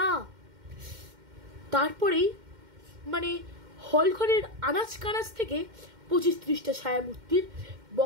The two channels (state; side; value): late; left; 2.1 ms